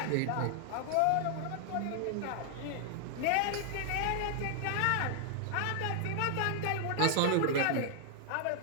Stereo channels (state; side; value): different; both; correlation -0.01